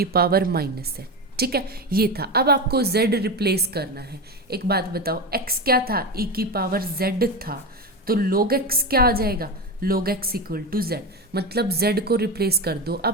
पावर माइनस z, ठीक है। ये था। अब आपको z रिप्लेस करना है। एक बात बताओ, x क्या था, e की पावर z था, तो log x क्या आ जाएगा, log x equal to z, मतलब z को रिप्लेस कर दो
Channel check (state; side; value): normal; both; correlation 0.19